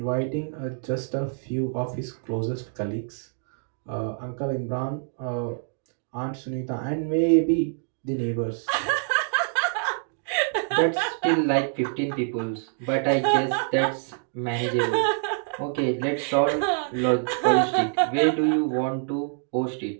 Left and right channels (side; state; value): left; silent; digital silence